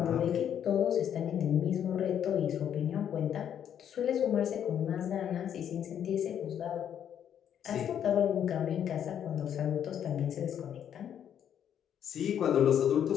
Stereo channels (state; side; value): quieter; right; 9.3 dB